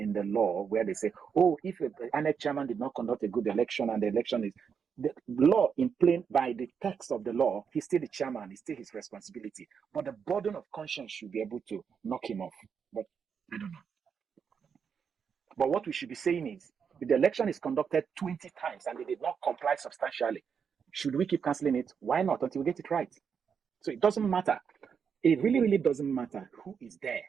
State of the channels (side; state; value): left; quieter; 6.7 dB